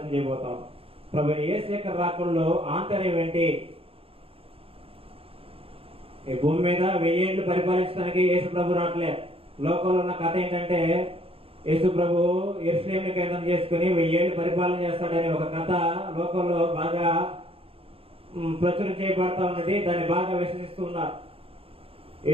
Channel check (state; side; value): late; left; 0.27 ms